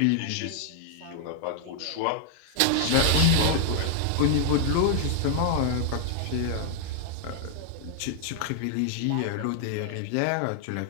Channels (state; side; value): different; both; correlation 0.00